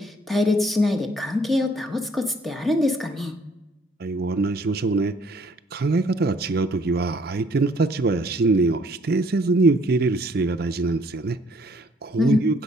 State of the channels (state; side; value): normal; both; correlation 0.62